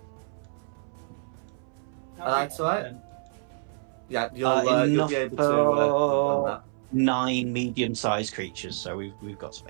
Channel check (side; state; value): left; silent; 60 dB below the other